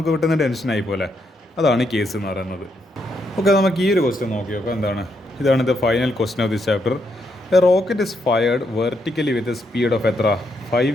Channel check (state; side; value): normal; both; correlation 0.78